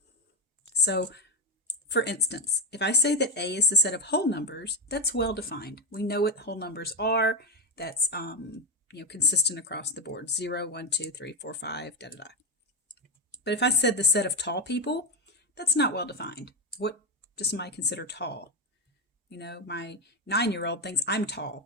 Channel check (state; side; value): normal; both; correlation 0.09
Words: So for instance, if I say that A is the set of whole numbers, that's well defined. We know what whole numbers are. That's consistent across the board. 0, 1, 2, 3, 4, 5, da da da. But if I said the set of tall people, that's not well defined. What does somebody consider tall? You know, my 9-year-old thinks I'm